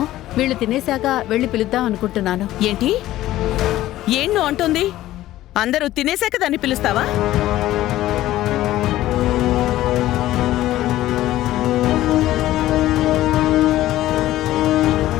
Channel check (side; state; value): right; quieter; 14.9 dB